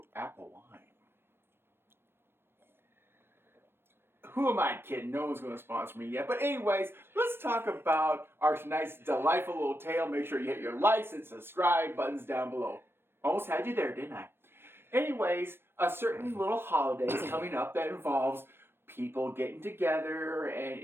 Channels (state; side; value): late; left; 0.11 ms